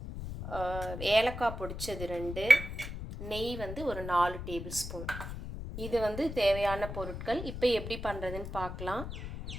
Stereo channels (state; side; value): noise; left; rumble, 8 dB below the sound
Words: ஏலக்காய் பொடிச்சது 2, நெய் ஒரு 4 டேபிள் ஸ்பூன். இது தேவையான பொருட்கள். இப்போ எப்படி பண்ணுறதுன்னு பார்க்கலாம்.